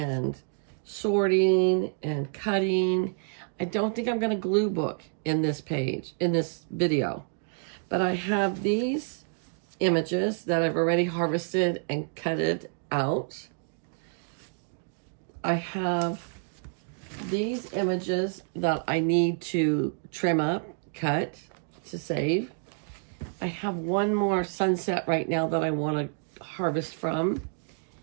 sorting and cutting. I don't think I'm going to glue book in this page, in this video. But I have these images that I've already harvested and cutted out. I have these images that I need to trim up, cut to save. I have one more sunset right now that I want to harvest from.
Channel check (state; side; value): silent; left; 57 dB below the other